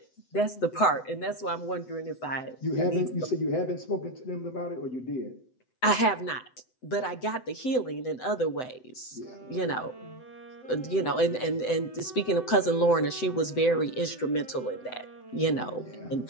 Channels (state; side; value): late; right; 7.9 ms